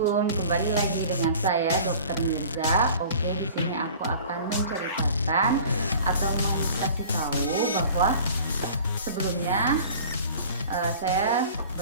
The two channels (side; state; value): both; inverted; correlation -0.44